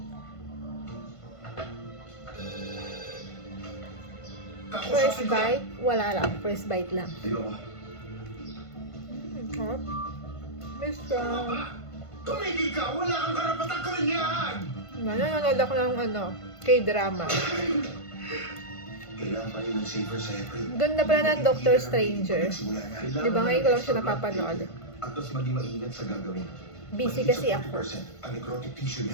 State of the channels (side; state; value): right; late; 1.5 ms